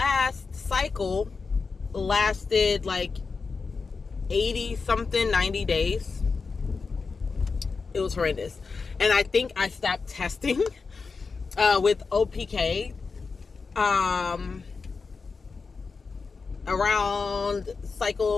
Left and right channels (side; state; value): right; quieter; 4.7 dB